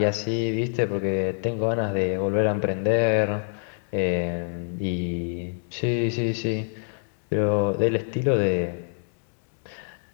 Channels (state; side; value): silent; right; digital silence